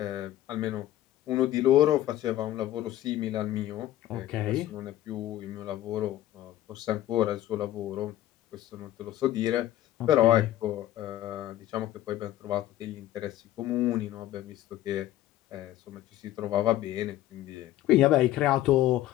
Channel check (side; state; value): right; quieter; 13.8 dB